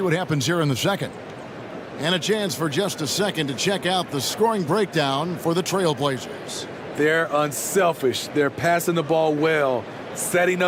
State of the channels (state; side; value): identical; both; correlation 1.00